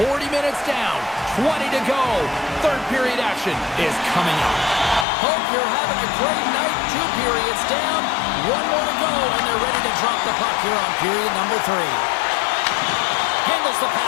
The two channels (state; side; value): drops out; right; at 5.1 s